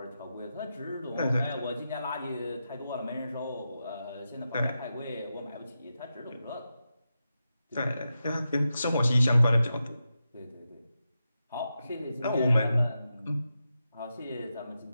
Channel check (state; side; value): inverted; both; correlation -0.89